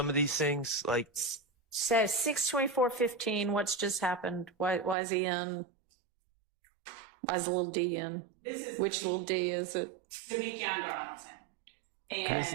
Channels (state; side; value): drops out; left; at 5.0 s